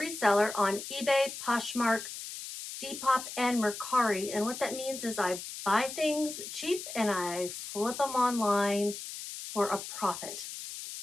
on eBay, Poshmark, Depop, and Mercari. And what that means is I buy things cheap and I flip them online for a profit.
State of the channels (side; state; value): left; noise; hiss, 9 dB below the sound